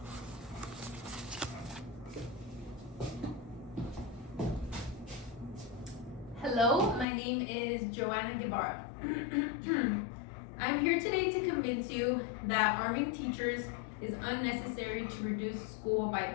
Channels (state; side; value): drops out; right; at 7.1 s